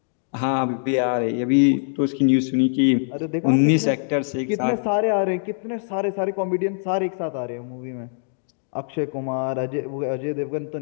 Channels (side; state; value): right; silent; digital silence